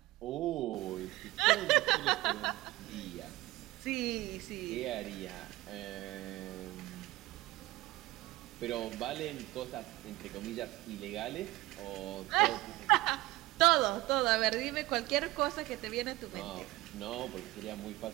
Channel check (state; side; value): quieter; left; 18.6 dB